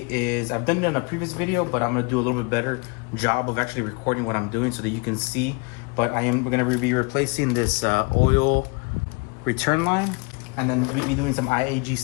is, I've done it in a previous video, but I'm going to do a little bit better job of actually recording what I'm doing so that you can see. But we're going to be replacing this oil return line, and then we'll be doing some IAG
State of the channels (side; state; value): right; quieter; 30.2 dB